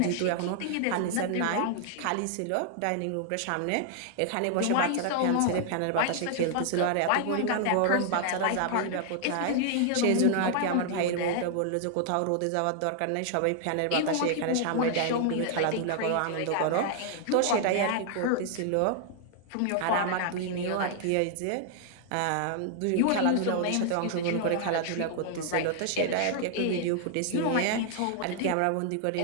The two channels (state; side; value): different; both; correlation 0.00